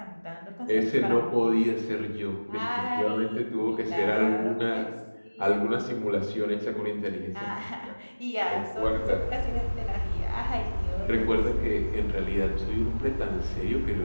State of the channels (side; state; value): both; inverted; correlation -1.00